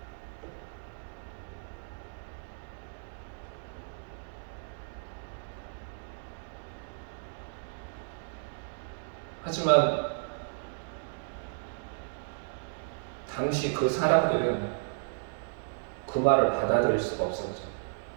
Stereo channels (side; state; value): left; silent; digital silence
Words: 하지만 당시 그 사람들은 그 말을 받아들일 수가 없었죠.